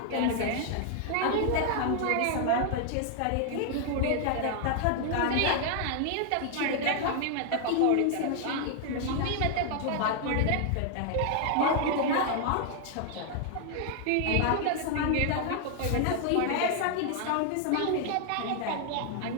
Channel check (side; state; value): both; different; correlation 0.00